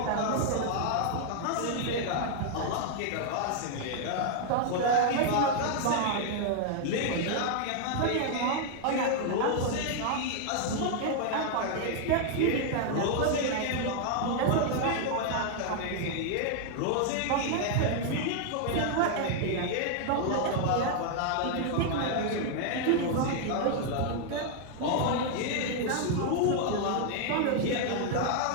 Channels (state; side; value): different; both; correlation 0.00